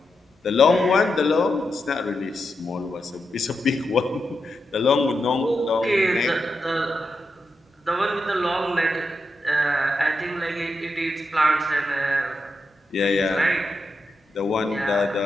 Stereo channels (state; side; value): normal; both; correlation 0.86